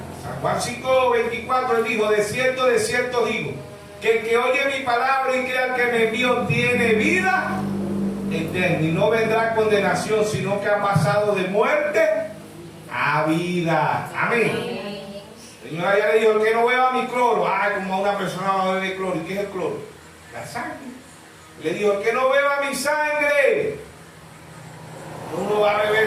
San Juan 5:24 él dijo, de cierto digo, que el que oye mi palabra y crea que me envió tiene vida eterna y no vendrá condenación, sino que ha pasado de muerte a vida. Amén. Señora ya le dijo, el que no beba mi cloro, como a una persona va a beber cloro. ¿Y qué es el cloro? La sangre. Le dijo, el que no beba mi sangre, uno va a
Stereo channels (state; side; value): identical; both; correlation 1.00